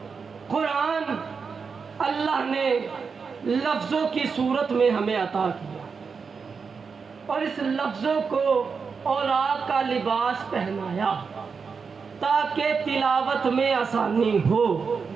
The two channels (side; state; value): left; quieter; 5.4 dB